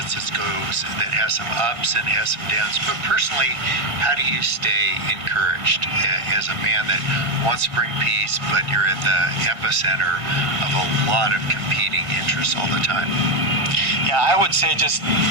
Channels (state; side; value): late; left; 1.6 ms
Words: that has some ups and has some downs. But personally, how do you stay encouraged as a man that wants to bring peace, but you're at the epicenter of a lot of competing interests all the time? Yeah, I would say just